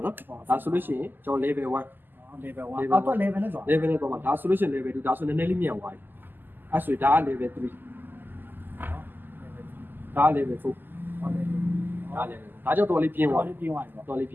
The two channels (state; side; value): late; left; 0.091 ms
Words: ာနော်ဒါဆိုလို့ရှိရင်ကျွန်တော် level 1 level 1အောက်တော့ level နဲ့ဆို level နဲ့တော့မှာဒါဆိုလို့ရှိရင် level 2ဒါဆိုနည်းနည်းလေးမြန်သွားပြီအဲ့ဆိုဒါက level 3ဒါက level 4ဒါ level ဒါကြောင့်တော်လေးပြင်းသွား တော်လေးပြင်းသွားပြီ တော်လေးပ